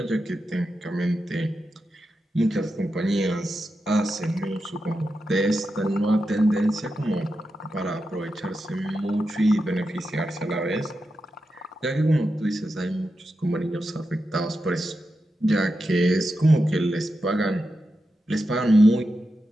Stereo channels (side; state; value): both; normal; correlation 0.89